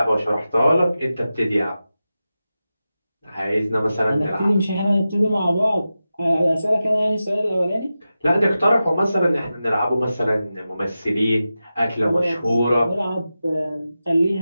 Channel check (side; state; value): both; inverted; correlation -0.93